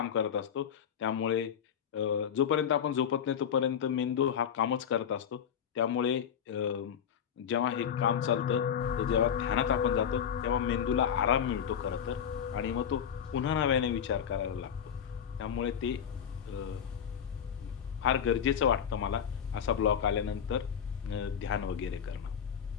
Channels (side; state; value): right; quieter; 8.2 dB